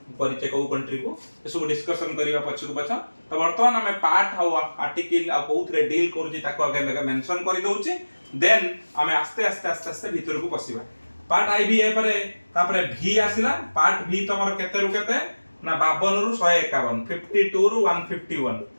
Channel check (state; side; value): inverted; both; correlation -1.00